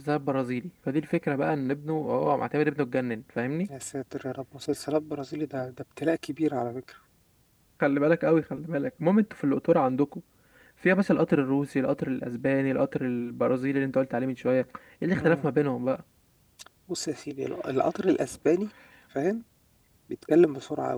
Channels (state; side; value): identical; both; correlation 1.00